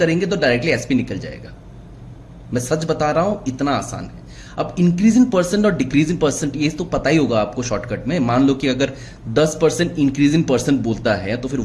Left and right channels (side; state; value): both; identical; correlation 1.00